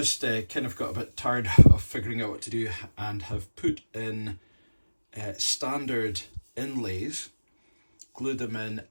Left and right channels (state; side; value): inverted; both; correlation -1.00